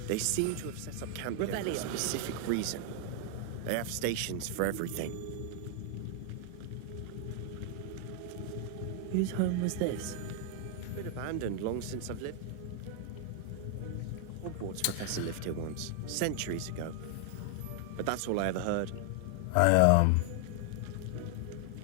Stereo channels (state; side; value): different; both; correlation 0.00